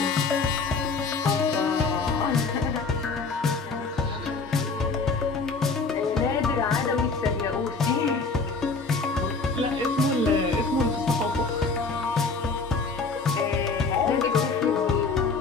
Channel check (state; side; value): quieter; right; 4.2 dB